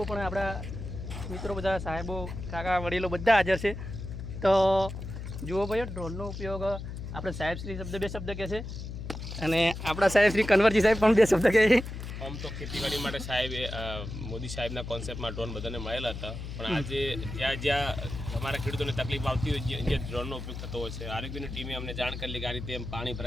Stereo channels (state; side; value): noise; left; hum, 8 dB below the sound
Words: પણ આપણા મિત્રો, બધા સાહેબો, કાકા, વડીલો બધા હાજર છે। તો જુઓ ભાઈ, ડ્રોનનો ઉપયોગ આપણે સાહેબશ્રી બે શબ્દ કહે છે, અને આપણા સાહેબશ્રી કન્વરજી સાહેબ પણ બે શબ્દ કહે છે। આમ તો ખેતીવાડી માટે સાહેબ મોદી સાહેબના કોન્સેપ્ટમાં ડ્રોન બધાને મળેલા હતા, પણ આજે જ્યાં અમારા ખેડૂતોને તકલીફ આવતી હોય જે ડ્રોનનો ઉપયોગ થતો હોય છે, આરોગ્યની ટીમે અમને જાણ કરી કે આ રીતે પાણી